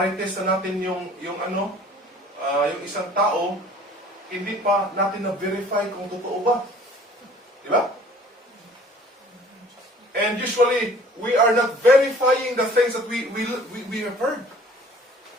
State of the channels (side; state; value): both; normal; correlation 0.51